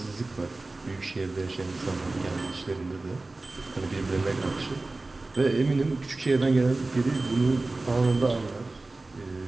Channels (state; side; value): quieter; left; 3.2 dB